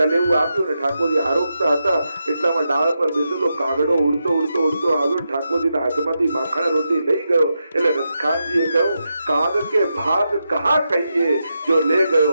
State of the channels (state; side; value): inverted; both; correlation -0.86